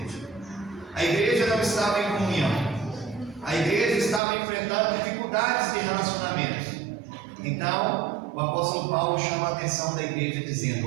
A igreja não estava em comunhão. A igreja estava enfrentando dificuldades de relacionamento. Então, o apóstolo Paulo chama a atenção da igreja dizendo:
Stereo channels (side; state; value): left; drops out; at 4.2 s